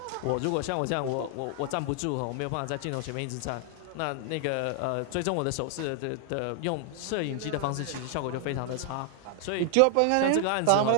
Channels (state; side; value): different; both; correlation 0.00